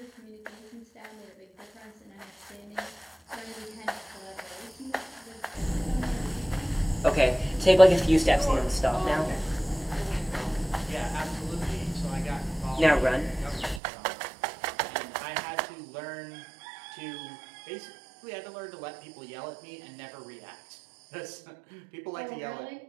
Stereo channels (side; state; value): left; drops out; at 13.8 s